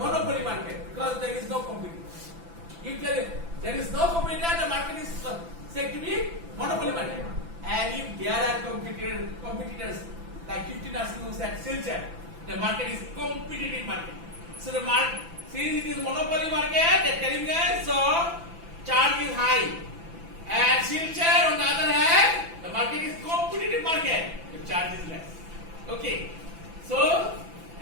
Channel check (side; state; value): left; late; 6.0 ms